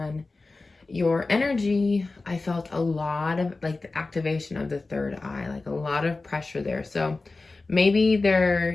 your energy, I felt a lot of like the activation of the third eye, like a lot of pressure there. So maybe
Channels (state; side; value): quieter; right; 3.5 dB